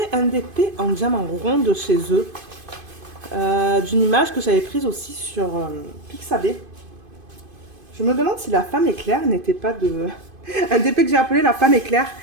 un DP en diamant rond de chez eux. D'une image que j'avais prise aussi sur Pixabay. Je me demande si la femme éclair n'était pas de... un DP que j'ai appelé la femme éclair,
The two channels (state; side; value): late; left; 2.5 ms